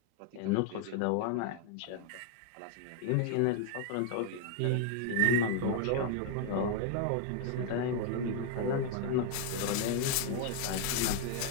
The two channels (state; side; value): different; both; correlation 0.00